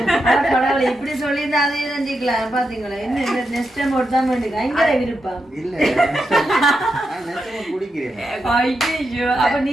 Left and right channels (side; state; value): both; normal; correlation 0.86